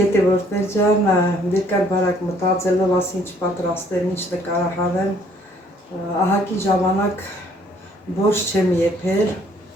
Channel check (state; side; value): normal; both; correlation 0.62